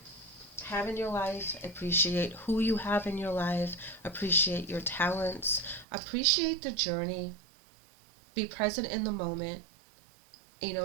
have in your life. Appreciate who you have in your life. Appreciate your talents. Appreciate the journey. Be present in the moment, and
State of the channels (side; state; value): left; drops out; at 5.9 s